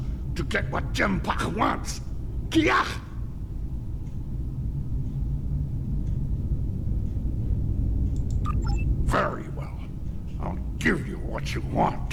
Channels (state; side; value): identical; both; correlation 1.00